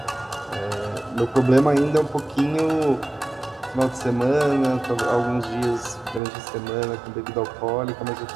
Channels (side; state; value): left; drops out; at 6.2 s